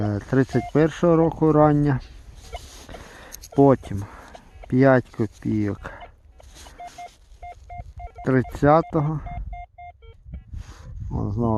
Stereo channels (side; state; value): both; identical; correlation 1.00